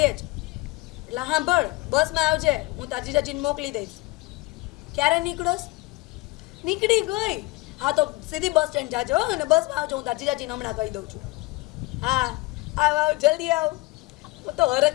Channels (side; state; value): right; quieter; 21.9 dB